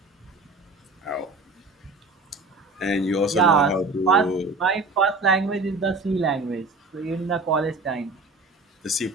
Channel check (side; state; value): left; quieter; 3.3 dB